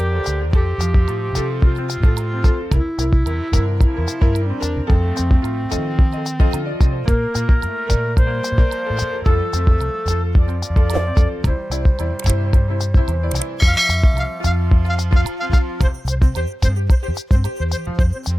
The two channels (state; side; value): normal; both; correlation 0.96